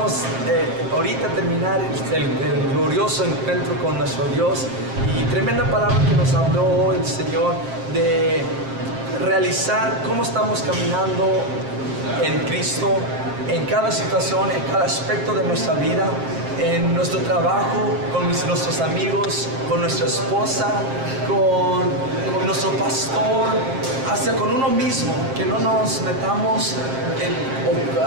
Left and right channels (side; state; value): left; late; 7.5 ms